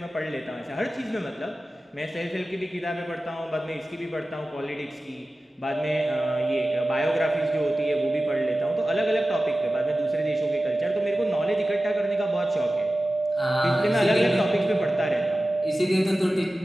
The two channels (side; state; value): both; normal; correlation 0.95